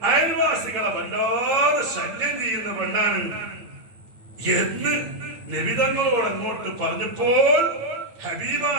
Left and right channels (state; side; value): late; left; 8.5 ms